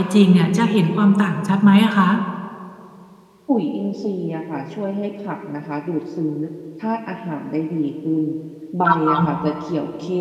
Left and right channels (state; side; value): identical; both; correlation 1.00